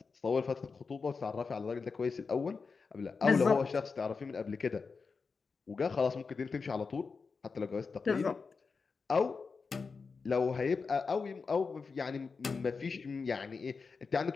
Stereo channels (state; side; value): quieter; right; 4.8 dB